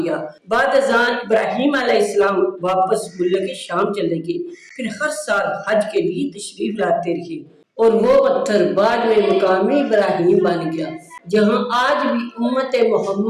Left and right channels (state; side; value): identical; both; correlation 1.00